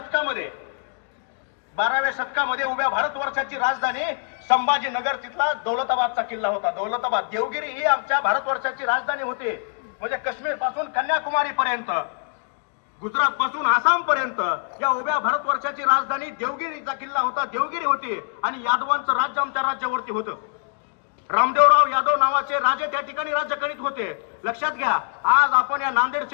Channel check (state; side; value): silent; right; digital silence